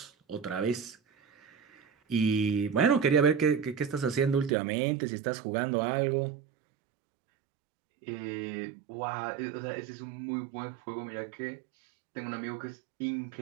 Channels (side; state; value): left; drops out; at 4.5 s